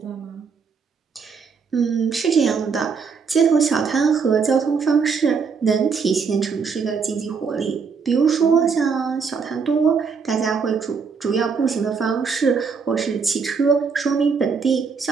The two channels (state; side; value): quieter; left; 5.6 dB